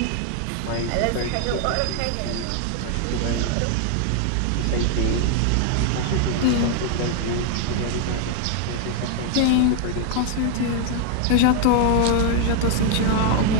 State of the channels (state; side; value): different; both; correlation 0.00